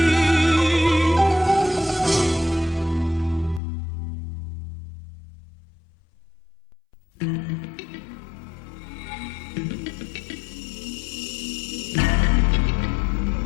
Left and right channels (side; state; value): right; drops out; at 3.6 s